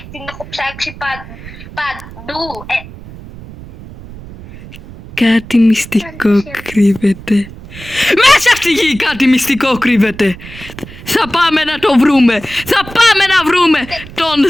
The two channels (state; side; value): noise; right; rumble, 16 dB below the sound